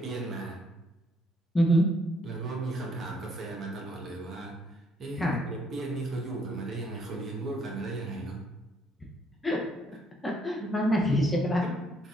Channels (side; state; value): both; normal; correlation 0.68